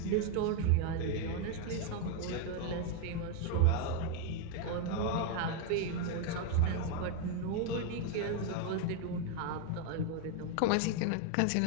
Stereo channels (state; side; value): different; both; correlation 0.01